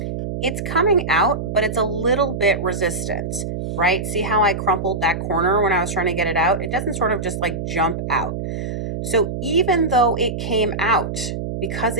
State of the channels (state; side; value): noise; right; hum, 5 dB below the sound